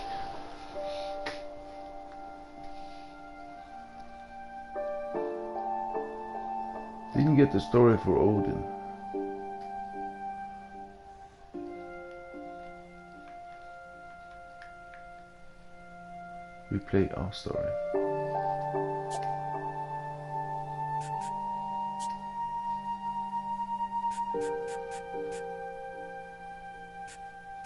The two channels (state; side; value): identical; both; correlation 1.00